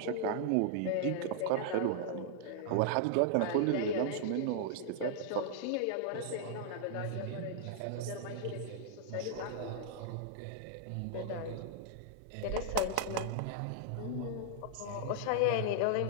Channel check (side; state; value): both; different; correlation -0.01